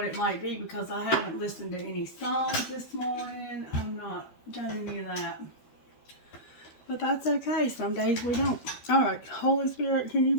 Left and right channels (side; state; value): right; late; 12 ms